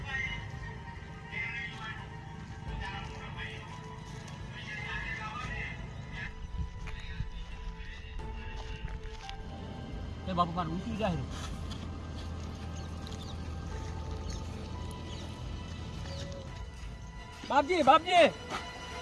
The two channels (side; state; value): both; identical; correlation 1.00